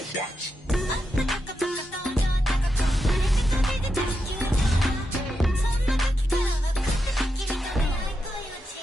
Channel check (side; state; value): both; normal; correlation 0.86